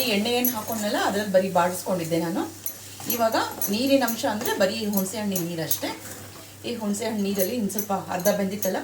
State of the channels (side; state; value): both; identical; correlation 1.00